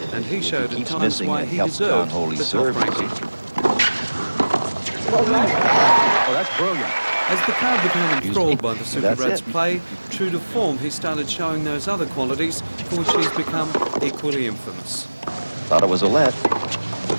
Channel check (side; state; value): both; inverted; correlation -1.00